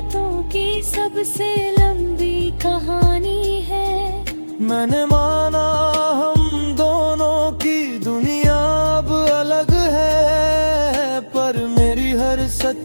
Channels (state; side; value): inverted; both; correlation -1.00